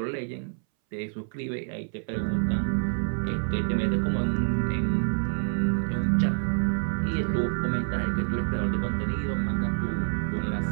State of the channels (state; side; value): silent; left; 60 dB below the other